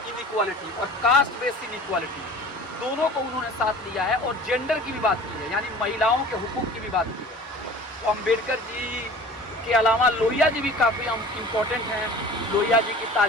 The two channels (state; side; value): normal; both; correlation 0.43